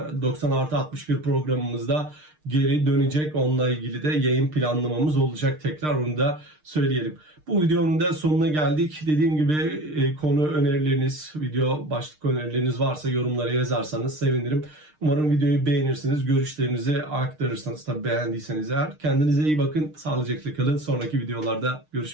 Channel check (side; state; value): left; late; 6.5 ms